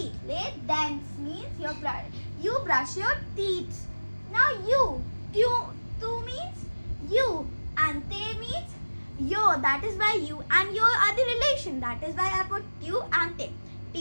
Les dents means you brush your teeth. Now tu means you, and te means yo. That is why you and yo are the relation. That is why I put you and te.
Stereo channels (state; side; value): inverted; both; correlation -1.00